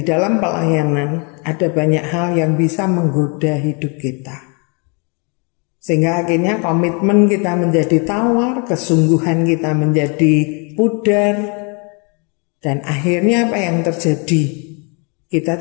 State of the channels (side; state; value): right; quieter; 34.3 dB